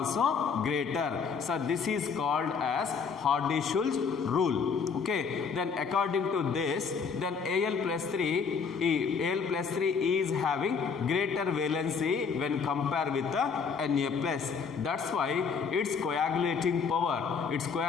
greater. So this is called as Hardy-Schulze rule. Okay, then according to this, then Al plus 3 is having greater valency when compared with the Na plus. That's why its coagulating power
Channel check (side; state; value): right; quieter; 5.7 dB